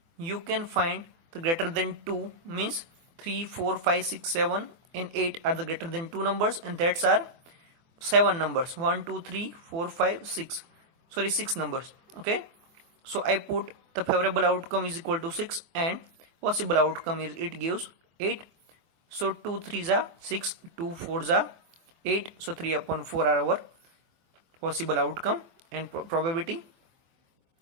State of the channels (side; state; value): left; late; 24 ms